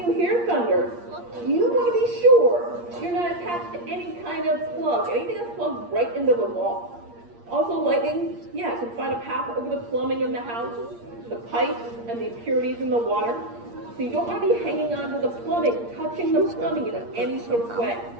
hear thunder, you want to be sure you're not attached to any kind of plug, anything that's plugged right into the wall. Also, lightning, can find a path over the plumbing in the house, the pipes and the impurities in the water. So you don't want to be hanging onto the plumbing, touching the plumbing in any sort of way.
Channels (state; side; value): late; left; 8.6 ms